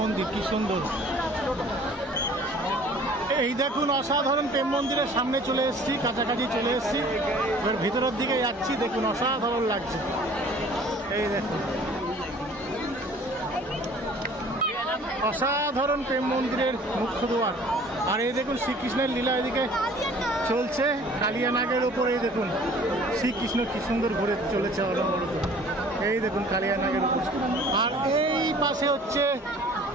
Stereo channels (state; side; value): normal; both; correlation 0.51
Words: মন্দির কি সুন্দর। এই দেখুন অসাধারণ প্রেম মন্দিরের সামনে চলে এসেছি, কাছাকাছি চলে এসেছি। এবার ভিতরের দিকে যাচ্ছি। দেখুন অসাধারণ লাগছে। এই দেখুন অসাধারণ প্রেম মন্দিরের মুখ্য দ্বার। আর এই দেখুন শ্রীকৃষ্ণের লীলা এদিকে চলছে কালিয়া নাগের উপরে। এই দেখুন শ্রীকৃষ্ণ কি সুন্দর ঘুরে চলেছে অনবরত। এই দেখুন কালিয়া নাগের উপর। আর এই পাশে হচ্ছে